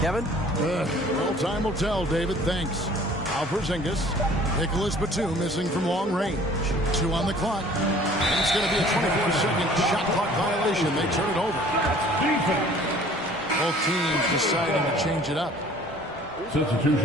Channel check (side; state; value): both; normal; correlation 0.52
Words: Kevin? Well, time will tell, David. Thanks. Al Porzingis. Nicholas Batum missing from long range. 2 on the clock. And it's going to be a 24-second shot clock violation. They turn it over. Both teams deciding to change it up.